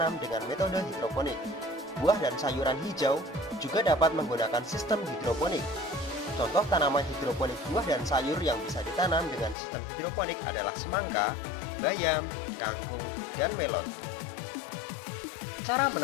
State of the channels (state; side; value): drops out; right; at 9.6 s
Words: dengan metode hidroponik. Buah dan sayuran hijau juga dapat menggunakan sistem hidroponik. Contoh tanaman hidroponik buah dan sayur yang bisa ditanam dengan sistem hidroponik adalah semangka, bayam, kangkung, dan melon. Cara